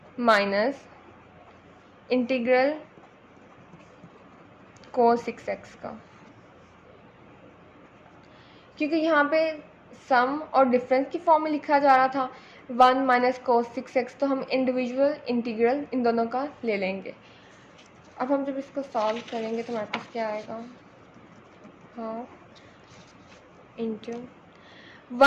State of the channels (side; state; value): both; identical; correlation 1.00